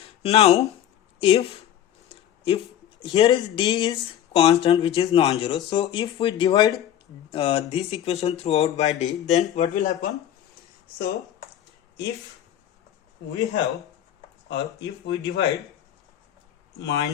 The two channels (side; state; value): right; quieter; 10.9 dB